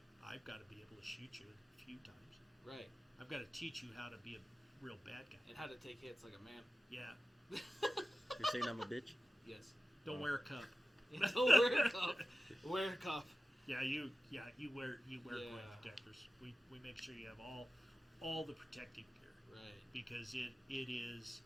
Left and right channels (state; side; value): normal; both; correlation 0.94